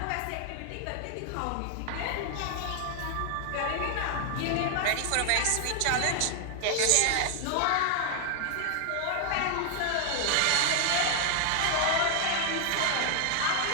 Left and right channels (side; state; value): both; different; correlation 0.00